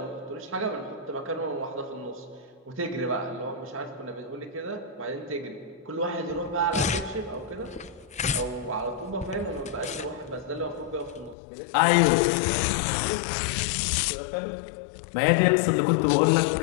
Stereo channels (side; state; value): right; drops out; at 11.4 s